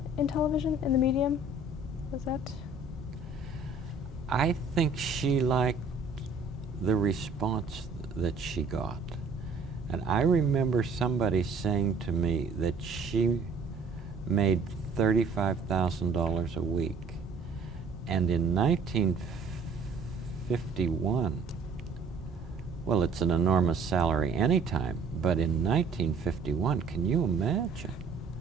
in television, in the medium? Was that? I think she liked the response that she got. And I remember somebody saying to me that she made $35,000 a week. And in 1951, well, it's an enormous salary anytime, but in 1951, can you imagine?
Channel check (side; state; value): left; quieter; 4.0 dB